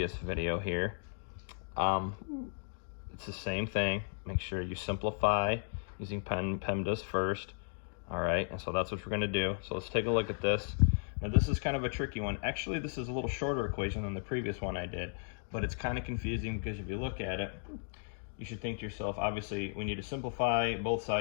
video here. It's the same thing. Make sure you simplify using PEMDAS first. All right, and so that's what we're going to do. So let's take a look at this. Now this is kind of a tricky one. Actually, this is a little shorter equation than the previous one I did, but it's kind of confusing because if you look at it, you should think to yourself, obviously, we need to simplify both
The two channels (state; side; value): silent; right; digital silence